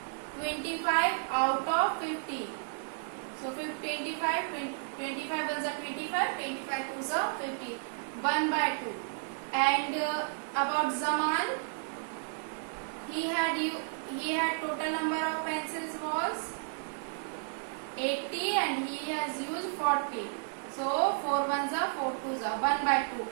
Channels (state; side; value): silent; left; 56 dB below the other